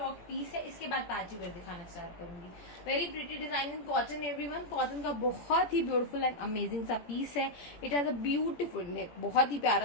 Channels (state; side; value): late; right; 17 ms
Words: piece है. इसके बाद पार्टी वेयर दिखाना स्टार्ट करूंगी. Very pretty design in cotton everyone. Cotton का बहुत ही ब्यूटीफुल एंड अमेजिंग सा पीस है. It has a beautiful neck, बहुत ही